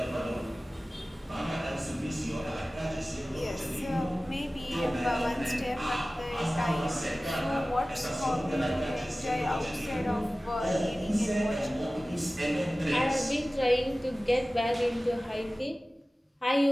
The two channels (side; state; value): both; normal; correlation 0.97